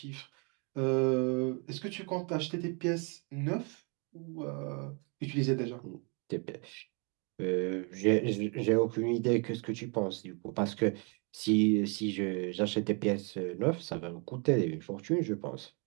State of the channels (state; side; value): quieter; left; 34.3 dB